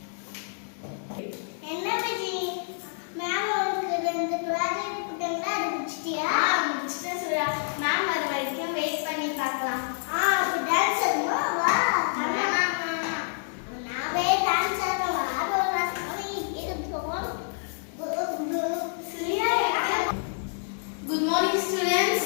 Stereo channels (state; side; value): silent; right; digital silence